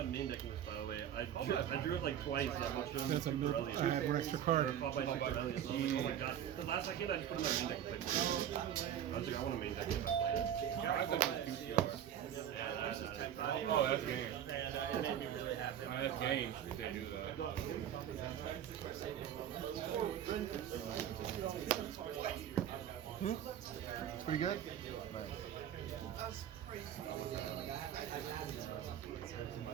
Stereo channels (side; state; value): left; quieter; 10.0 dB